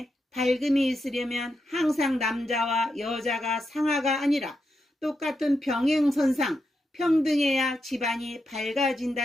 밝음이 있으려면 항상 남자와 여자가 상하가 아니라 똑같은 병행선상 평등해야 집안이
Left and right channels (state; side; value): normal; both; correlation 0.85